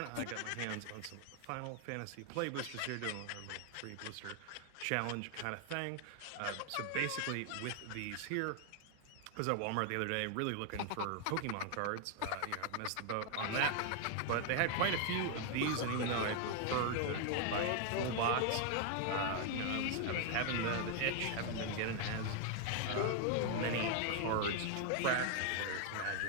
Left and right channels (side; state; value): both; different; correlation 0.00